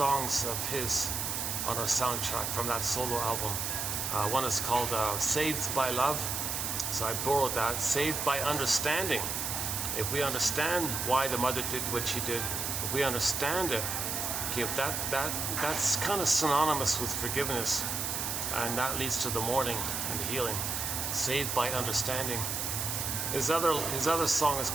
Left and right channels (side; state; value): right; noise; hiss, 2 dB below the sound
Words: of his on our soundtrack from that solo album. One is called Saved by Love. So I borrowed that. Saved by understanding. If we understand why the mother did what she did, if we understand it, okay, that's kind of synonymous with forgiveness, and that leads to the mourning and the healing. Saved by understanding. His other song is